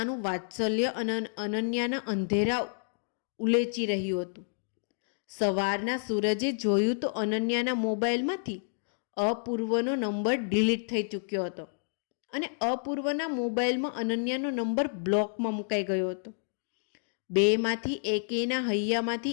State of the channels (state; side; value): silent; right; digital silence